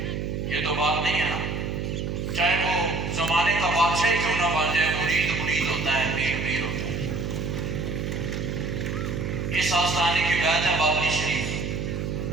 یہ تو بات نہیں ہے نا. چاہے وہ زمانے کا بادشاہ ہی کیوں نہ بن جائے مرید مرید ہوتا ہے پیر پیر ہوتا ہے. اس آستانے کی بیعت ہے بابلی شریف.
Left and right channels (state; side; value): noise; right; hum, 3 dB below the sound